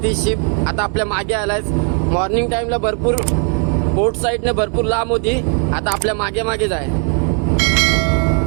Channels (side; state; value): left; quieter; 39.8 dB